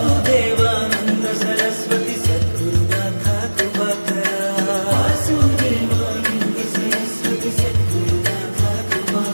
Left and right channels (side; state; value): both; inverted; correlation -1.00